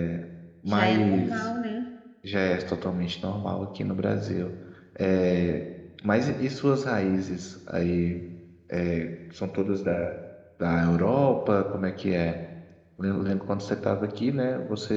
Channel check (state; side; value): identical; both; correlation 1.00